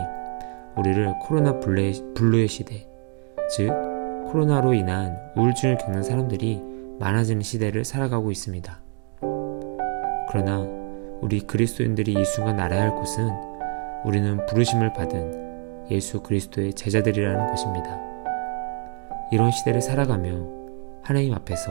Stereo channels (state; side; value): quieter; left; 38.5 dB